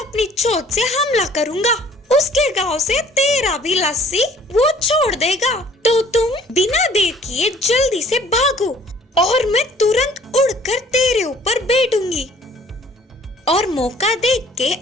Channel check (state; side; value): normal; both; correlation 0.55